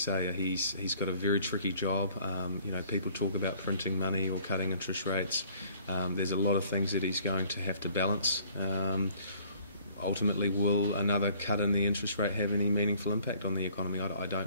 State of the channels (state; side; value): inverted; both; correlation -0.57